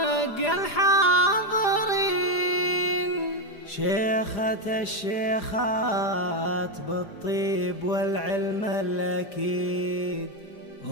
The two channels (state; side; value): late; right; 4.9 ms